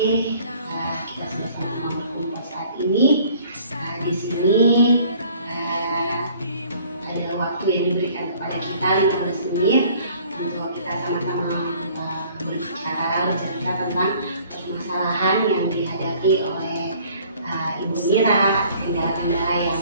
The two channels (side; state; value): both; inverted; correlation -0.55